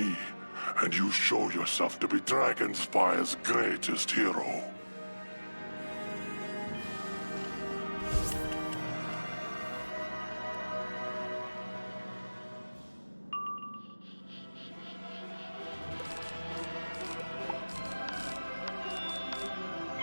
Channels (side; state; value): both; inverted; correlation -1.00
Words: and you show yourself to be Dragonspire's greatest hero.